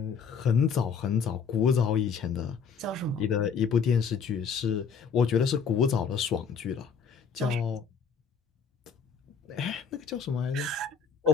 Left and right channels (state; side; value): quieter; right; 6.1 dB